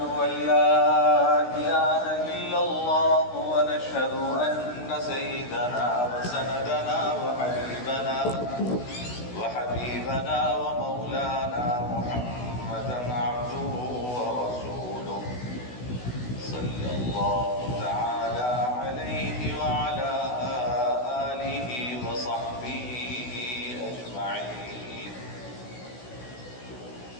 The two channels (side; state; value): right; late; 16 ms